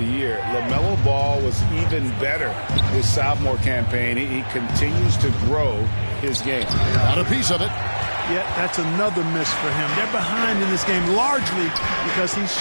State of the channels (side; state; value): both; inverted; correlation -1.00